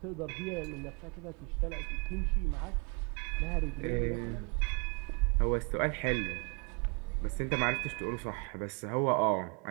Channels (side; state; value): left; quieter; 34.2 dB